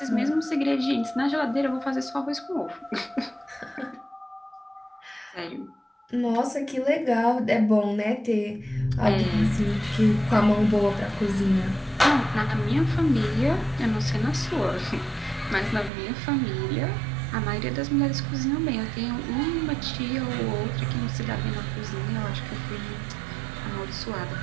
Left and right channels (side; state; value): left; drops out; at 15.9 s